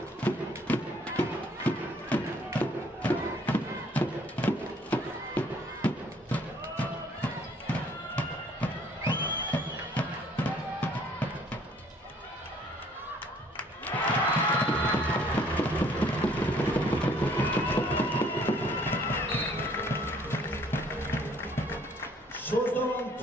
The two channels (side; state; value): both; normal; correlation 0.60